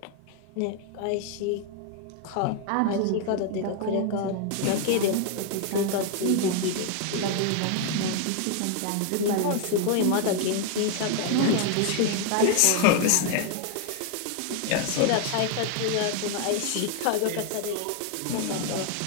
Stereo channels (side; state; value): both; different; correlation 0.00